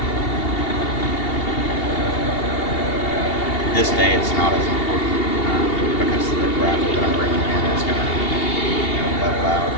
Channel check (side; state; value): right; late; 2.8 ms